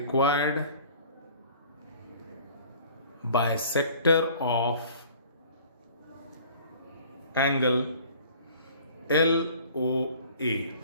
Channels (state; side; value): inverted; both; correlation -0.49